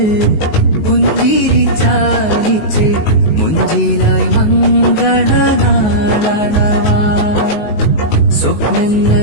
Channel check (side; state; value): right; late; 19 ms